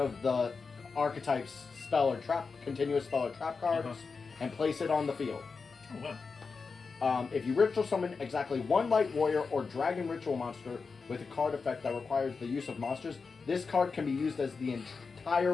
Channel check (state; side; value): quieter; right; 4.8 dB